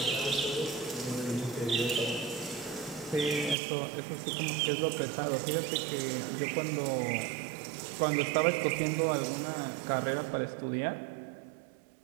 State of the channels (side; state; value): left; drops out; at 3.6 s